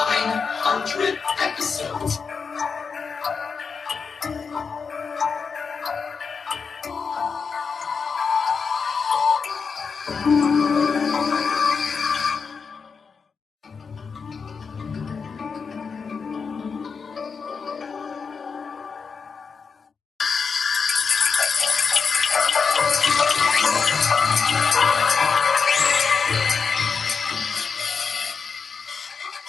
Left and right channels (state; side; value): quieter; right; 5.5 dB